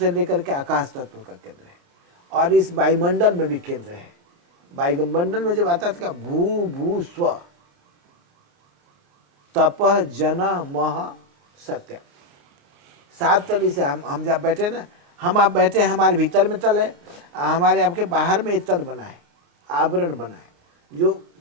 लेकर के आकाश तत्व का केंद्र है, और इस वायुमंडल में भी केंद्र है। वायुमंडल में जब आता था भू भू स्व तपह जना मह सत्य, 7 तली से हम जब बैठे ना, हम आप बैठे, हमारे भीतर में तल है, हमारे आपके बाहर में एक तल बना है, आवरण बना है जो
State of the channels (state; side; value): late; left; 29 ms